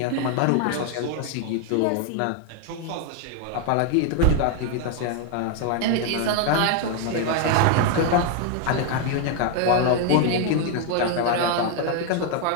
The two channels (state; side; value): different; both; correlation 0.00